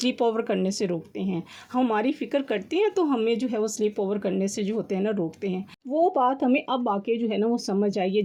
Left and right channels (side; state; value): both; identical; correlation 1.00